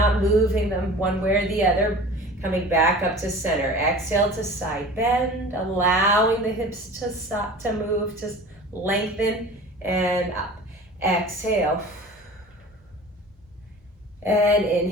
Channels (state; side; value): normal; both; correlation 0.40